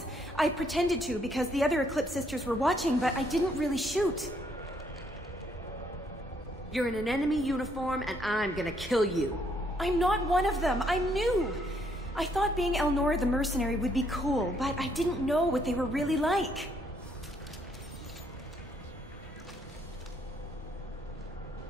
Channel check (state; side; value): normal; both; correlation 0.70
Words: I pretended to because the other Eclipse sisters were watching, but I didn't really shoot. You're in an enemy uniform, and I'm gonna kill you. I'm not one of them. I'm new. I thought being Elnora the mercenary would be cool, but I didn't know what they were really like.